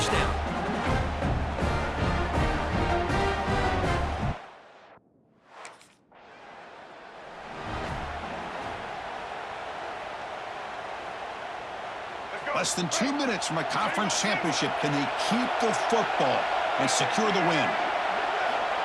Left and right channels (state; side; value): identical; both; correlation 1.00